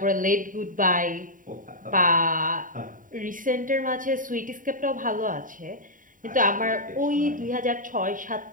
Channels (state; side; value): late; left; 0.39 ms